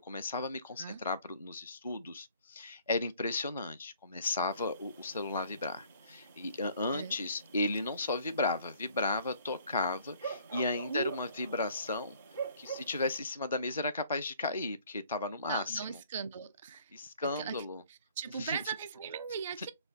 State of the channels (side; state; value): both; inverted; correlation -0.57